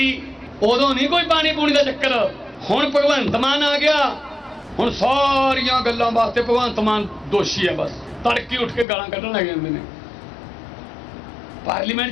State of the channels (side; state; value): right; drops out; at 8.8 s